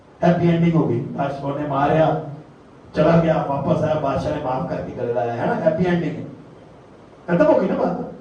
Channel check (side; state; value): both; identical; correlation 1.00